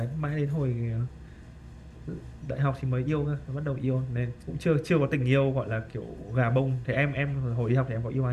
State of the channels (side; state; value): both; identical; correlation 1.00